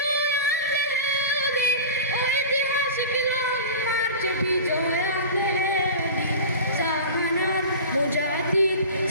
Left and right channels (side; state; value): both; inverted; correlation -0.34